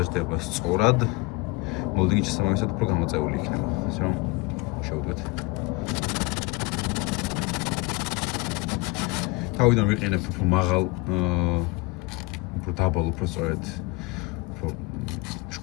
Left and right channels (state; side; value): quieter; right; 24.7 dB